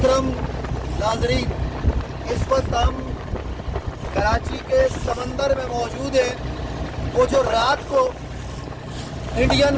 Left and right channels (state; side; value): identical; both; correlation 1.00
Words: ناظرین، اس وقت ہم کراچی کے سمندر میں موجود ہیں۔ وہ جو رات کو انڈین